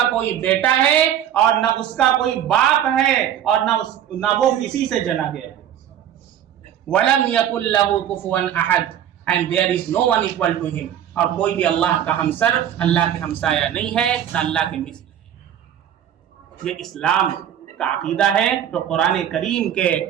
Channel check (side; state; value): left; quieter; 10.3 dB